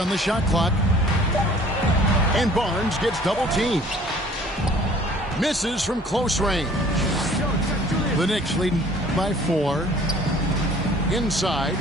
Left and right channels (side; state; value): both; normal; correlation 0.53